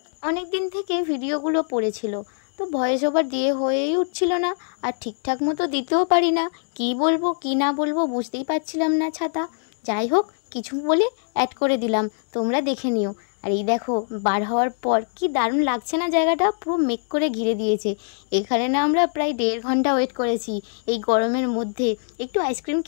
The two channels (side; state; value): right; silent; digital silence